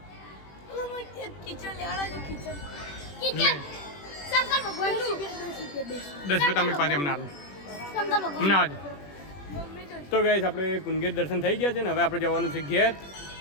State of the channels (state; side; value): late; right; 21 ms